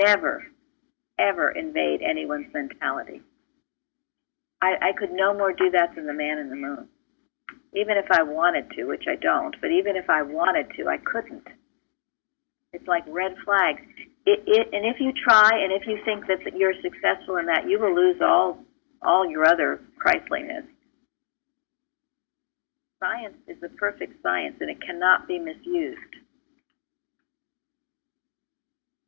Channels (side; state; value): right; silent; 61 dB below the other